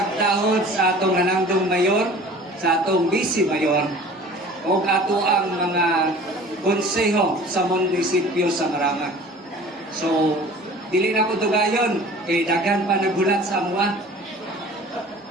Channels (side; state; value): both; normal; correlation 0.45